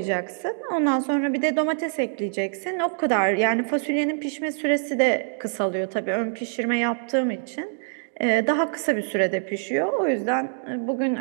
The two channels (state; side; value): silent; left; digital silence